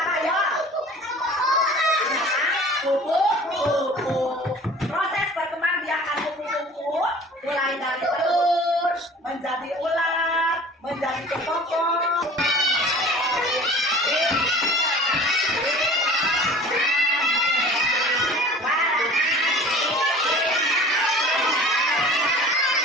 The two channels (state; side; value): normal; both; correlation 0.44